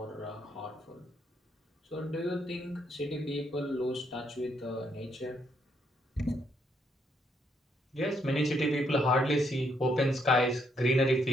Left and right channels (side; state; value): both; normal; correlation 0.74